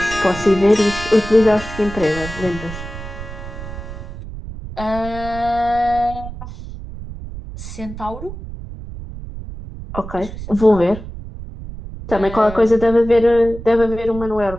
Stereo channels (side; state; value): right; noise; rumble, 11 dB below the sound